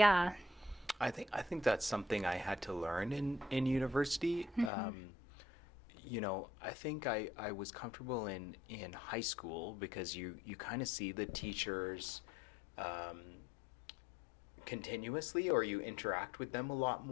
I think that's something I had to learn in university. I think I was comfortable in high school because you kind of see the teachers continuously or you interact with them a lot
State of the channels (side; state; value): right; drops out; at 4.7 s